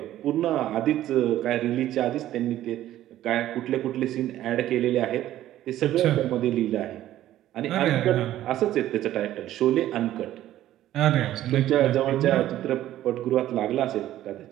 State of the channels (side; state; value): left; quieter; 13.4 dB